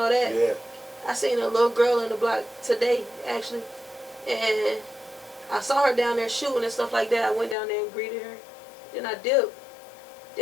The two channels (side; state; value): right; drops out; at 7.6 s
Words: that. Yeah. I seen a little girl in the block today actually, and I saw her down there shooting and stuff like that. I went down there and greeted her. Then I dipped.